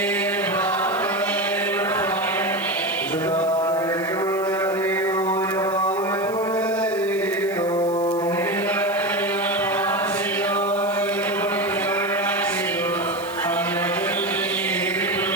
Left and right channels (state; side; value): noise; right; hiss, 19 dB below the sound